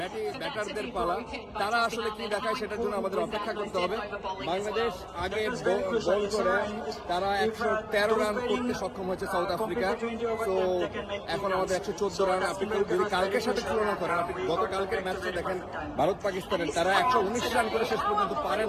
ব্যাটারদের পালা, তারা আসলে কি দেখায় সেটার জন্য আমাদের অপেক্ষা করতে হবে। বাংলাদেশ আগে বল করে তারা 113 রান করতে সক্ষম হয়েছে সাউথ আফ্রিকা। তো এখন আমাদের 114 রান। আপনি যদি কালকের সাথে তুলনা করেন, আপনি গতকালকের ম্যাচটা দেখেন ভারত পাকিস্তানের, তারা 119 রান করে শেষ পর্যন্ত পারে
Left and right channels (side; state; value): both; identical; correlation 1.00